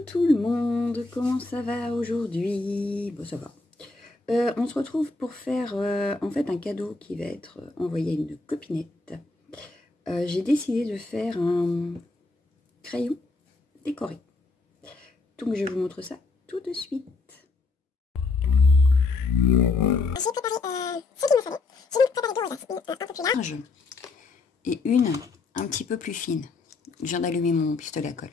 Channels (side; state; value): right; quieter; 3.7 dB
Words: le monde, comment ça va aujourd'hui? Bon, ça va. On se retrouve pour faire en fait un cadeau qui va être envoyé à une copinette. J'ai décidé de faire un crayon décoré. Donc je vous montre ça tout de suite. J'ai préparé ce qu'il me fallait. J'ai donc préparé deux rosaces, une un peu plus large et une un petit peu plus fine. Je viens d'allumer mon pistolet à colle.